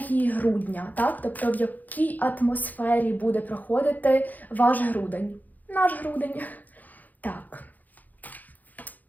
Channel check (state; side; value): late; right; 0.082 ms